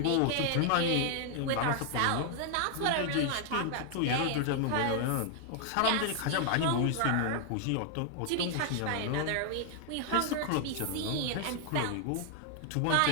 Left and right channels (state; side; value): different; both; correlation 0.00